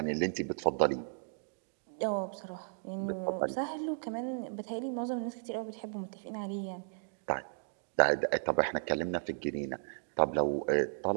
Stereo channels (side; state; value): left; silent; digital silence